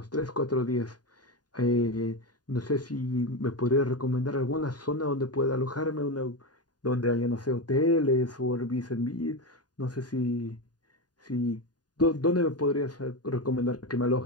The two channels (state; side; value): late; right; 0.69 ms